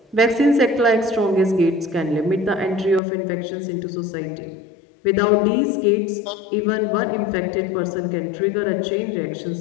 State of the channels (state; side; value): drops out; right; at 3.0 s